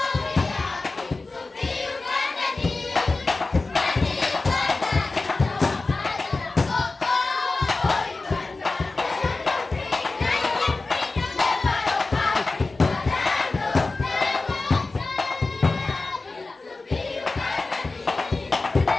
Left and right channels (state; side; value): quieter; right; 3.5 dB